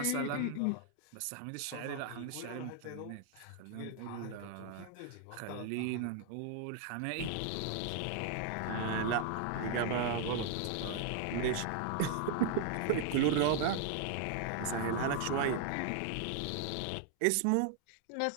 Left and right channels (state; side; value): different; both; correlation 0.00